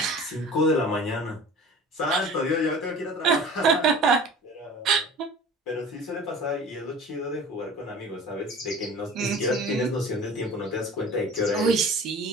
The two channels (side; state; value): both; normal; correlation 0.41